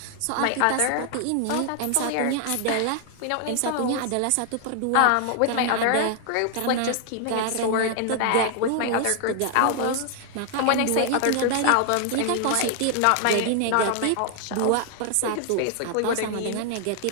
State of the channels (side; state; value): both; different; correlation 0.00